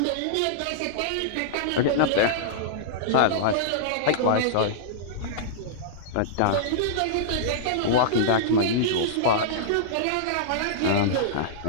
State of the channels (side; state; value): both; different; correlation -0.02